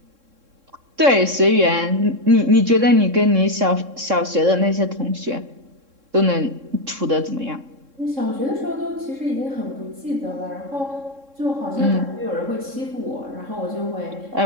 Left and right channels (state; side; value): late; left; 3.7 ms